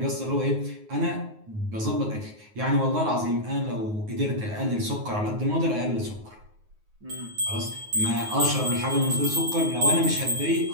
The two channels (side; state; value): left; late; 9.4 ms